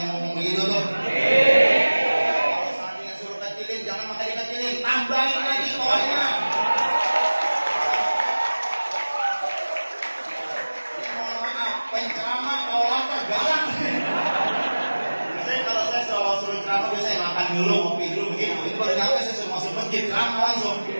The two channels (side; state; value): both; inverted; correlation -1.00